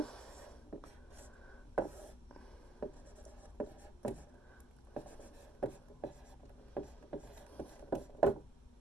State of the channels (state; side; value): normal; both; correlation 0.70